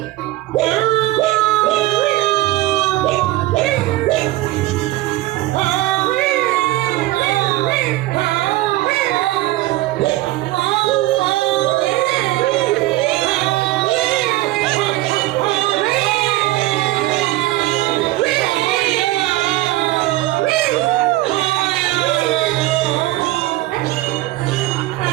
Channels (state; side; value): quieter; left; 17.6 dB